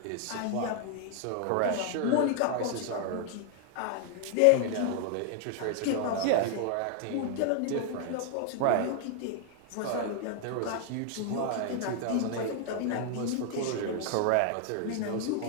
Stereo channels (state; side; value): different; both; correlation 0.00